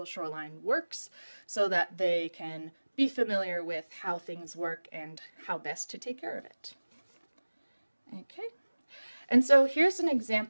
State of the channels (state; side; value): inverted; both; correlation -1.00